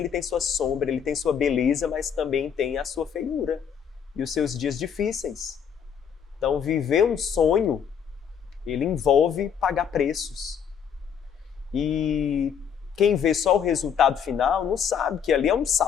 tem sua sombra, ele tem sua beleza, mas também tem a sua feiura e os seus dias difíceis. Então viver um sonho ele envolve pagar preços. E quem vê só o resultado final não sabe que ali é um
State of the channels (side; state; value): right; quieter; 7.7 dB